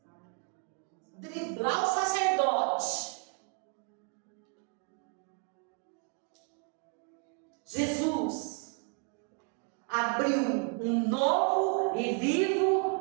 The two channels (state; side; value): quieter; left; 39.4 dB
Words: Driblar o sacerdote. Jesus abriu um novo e